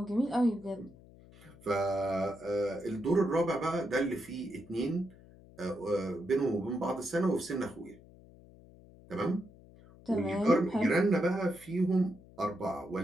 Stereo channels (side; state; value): left; noise; hum, 22 dB below the sound